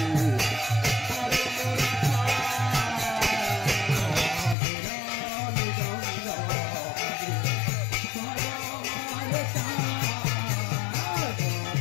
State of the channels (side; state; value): right; drops out; at 4.5 s